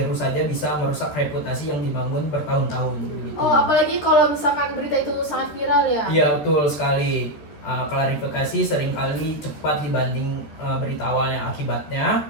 saja bisa merusak reputasi yang dibangun bertahun-tahun. Begitu. Oh, apalagi kalau misalkan berita itu sangat viral ya? Iya, betul sekali. Klarifikasi seringkali cepat dibanding berita awalnya. Akibatnya,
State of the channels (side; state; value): right; late; 14 ms